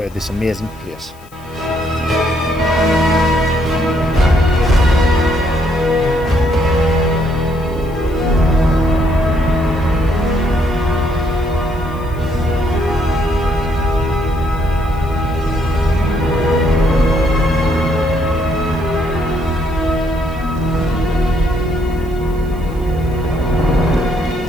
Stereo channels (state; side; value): noise; left; hiss, 27 dB below the sound